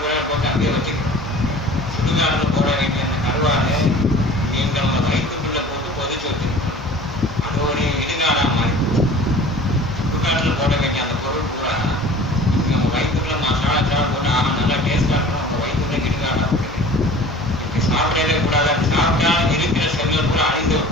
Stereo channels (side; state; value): both; normal; correlation 0.44